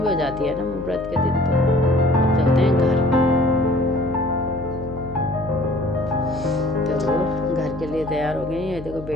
भी हो जाती है ना व्रत के दिन, तो अब चलते हैं घर। तो घर के लिए तैयार हो गए। ये देखो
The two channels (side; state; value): left; noise; hum, 14 dB below the sound